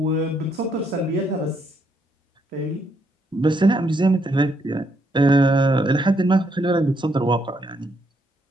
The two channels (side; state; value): both; normal; correlation 0.74